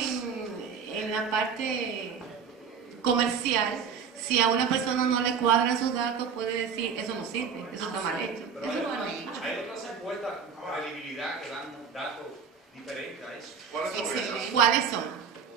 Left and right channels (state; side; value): quieter; left; 6.5 dB